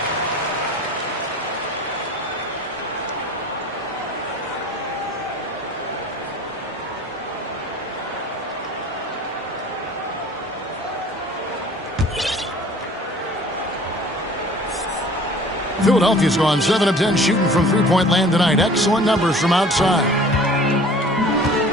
Philadelphia's gone 7 of 10 shooting from three-point land tonight. Excellent numbers from outside.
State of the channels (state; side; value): normal; both; correlation 0.47